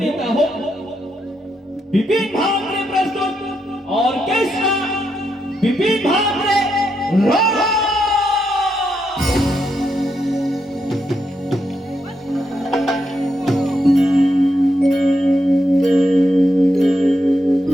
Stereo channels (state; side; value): normal; both; correlation 0.81